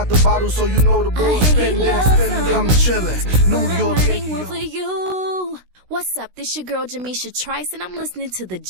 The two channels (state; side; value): late; left; 16 ms